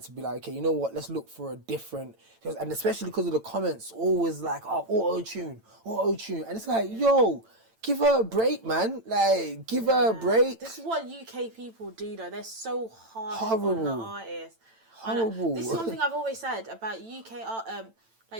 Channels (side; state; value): left; late; 8.9 ms